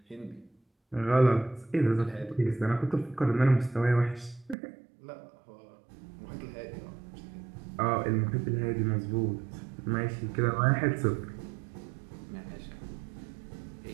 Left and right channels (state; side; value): drops out; left; at 4.5 s